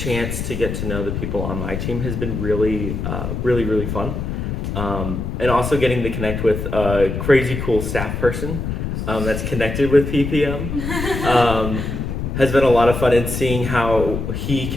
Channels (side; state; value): left; noise; rumble, 4 dB below the sound